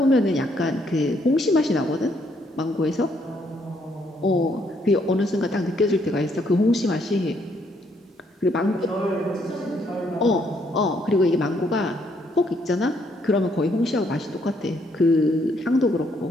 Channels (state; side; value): normal; both; correlation 0.71